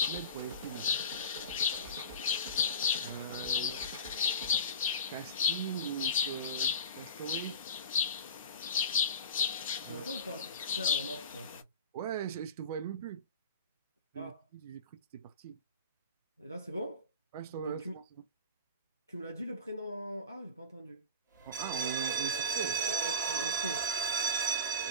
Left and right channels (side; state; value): both; inverted; correlation -0.30